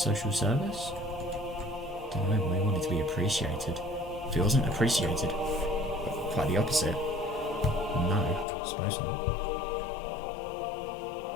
service? Don't know, but he wanted to be appreciated. If he wasn't appreciated, quite the opposite. No, I suppose not.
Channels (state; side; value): drops out; right; at 8.5 s